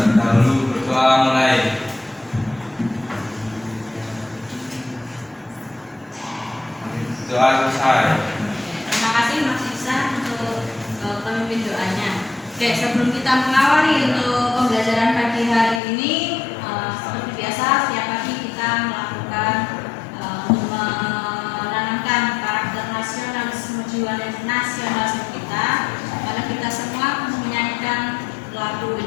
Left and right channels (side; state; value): right; drops out; at 15.8 s